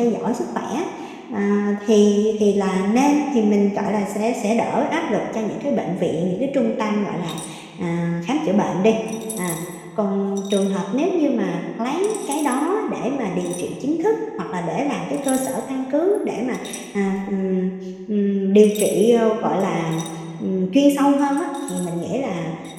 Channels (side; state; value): both; identical; correlation 1.00